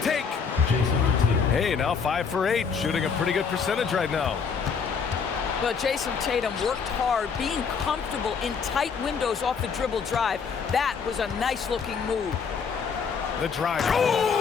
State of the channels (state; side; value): quieter; right; 6.0 dB